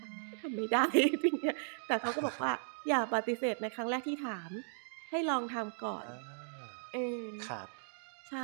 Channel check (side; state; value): left; silent; digital silence